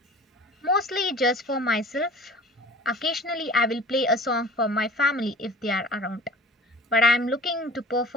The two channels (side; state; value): both; normal; correlation 0.43